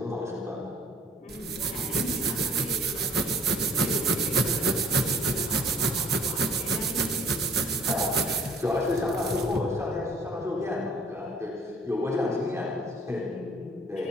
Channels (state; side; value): normal; both; correlation 0.56